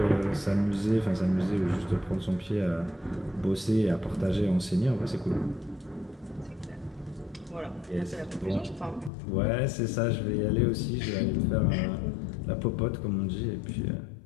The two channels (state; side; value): drops out; right; at 9.1 s